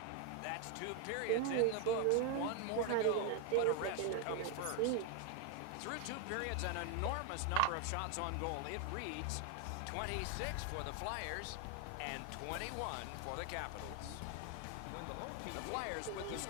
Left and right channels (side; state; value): both; different; correlation 0.01